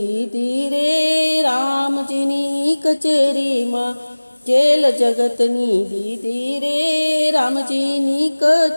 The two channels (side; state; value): both; inverted; correlation -1.00